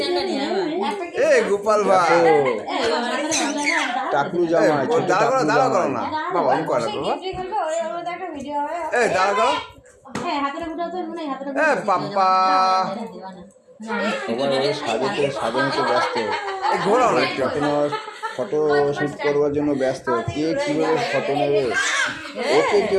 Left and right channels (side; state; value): both; identical; correlation 1.00